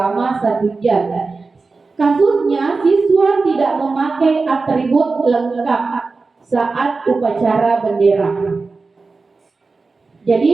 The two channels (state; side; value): quieter; left; 4.0 dB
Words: 1 jam. Kasusnya, siswa tidak memakai atribut lengkap saat upacara bendera.